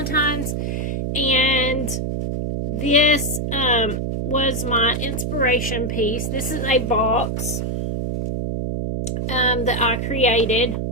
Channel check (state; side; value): noise; right; hum, 2 dB below the sound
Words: And this was my inspiration piece. This is a box that I created.